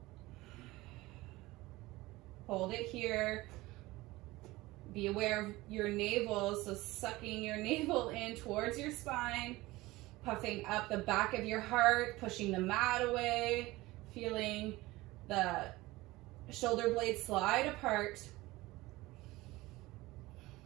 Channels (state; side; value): quieter; left; 19.7 dB